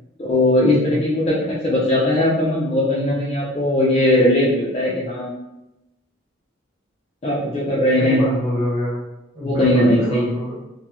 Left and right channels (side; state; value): both; normal; correlation 0.43